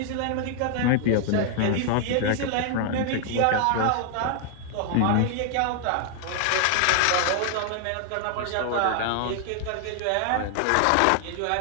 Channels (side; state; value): both; different; correlation 0.00